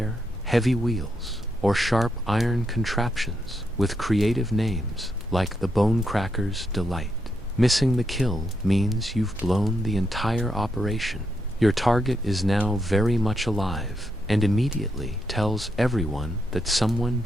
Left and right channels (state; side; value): normal; both; correlation 0.81